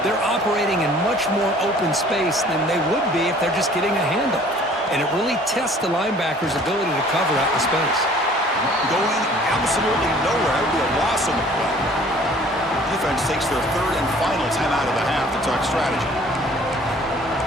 they're operating in much more open space than they would be if they're just getting a handoff. And it really tests the linebacker's ability to cover out the space. Going absolutely nowhere. That would be a loss on the play. Defense takes their third and final timeout of the half to talk strategy.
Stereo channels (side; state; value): both; normal; correlation 0.53